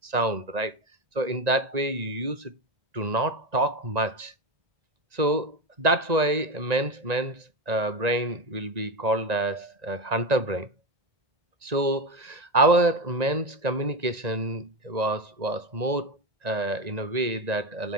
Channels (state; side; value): late; left; 1.9 ms